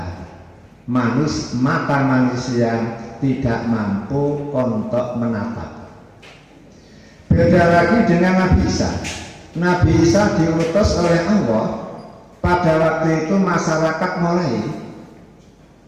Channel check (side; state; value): both; identical; correlation 1.00